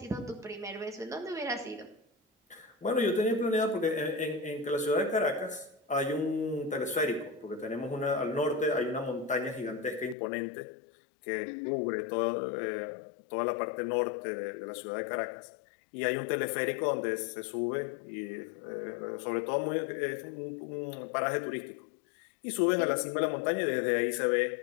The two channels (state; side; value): drops out; right; at 10.2 s